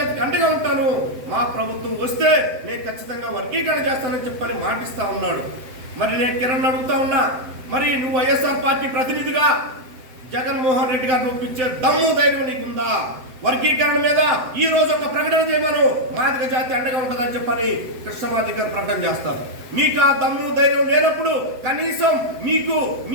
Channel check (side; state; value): left; late; 7.8 ms